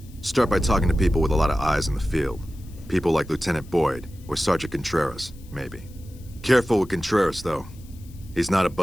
Start by talking to people with a lot of eyes in the field. People like Lieutenant Boyd, or Sergeant Contreras, maybe. Careful with Contreras, though. He's not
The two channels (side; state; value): left; noise; hiss, 26 dB below the sound